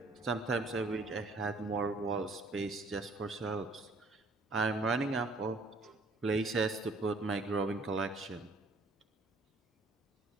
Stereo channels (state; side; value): quieter; left; 3.2 dB